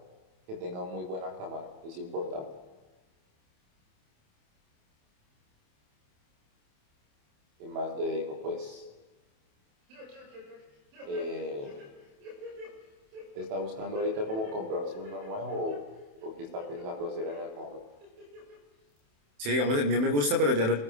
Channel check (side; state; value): left; late; 27 ms